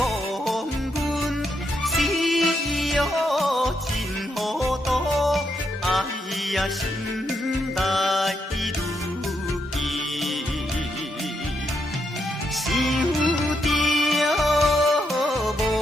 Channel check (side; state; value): both; normal; correlation 0.80